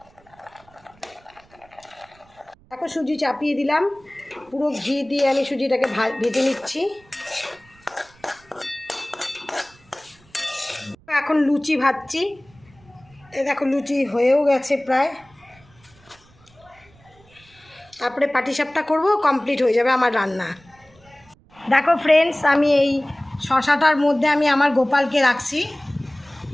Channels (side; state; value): right; noise; rumble, 29 dB below the sound